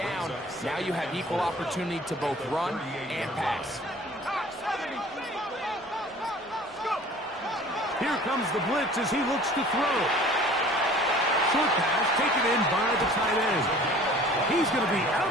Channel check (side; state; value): both; normal; correlation 0.48